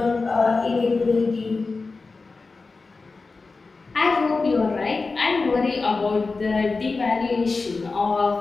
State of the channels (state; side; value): quieter; right; 4.0 dB